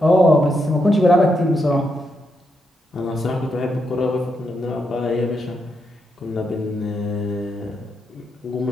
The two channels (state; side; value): normal; both; correlation 0.82